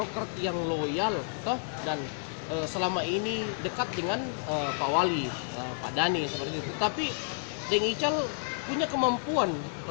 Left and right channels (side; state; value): right; silent; digital silence